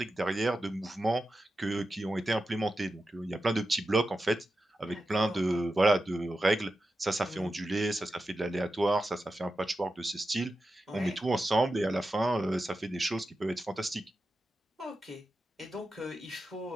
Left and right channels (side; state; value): both; normal; correlation 0.91